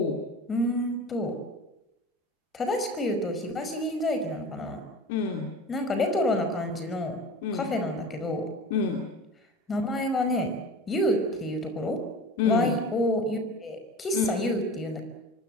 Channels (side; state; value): both; normal; correlation 0.36